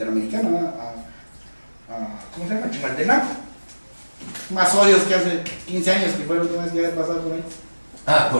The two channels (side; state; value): both; inverted; correlation -1.00